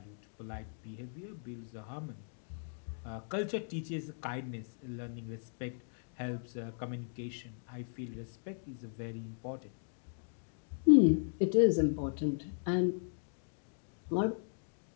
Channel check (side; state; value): right; silent; digital silence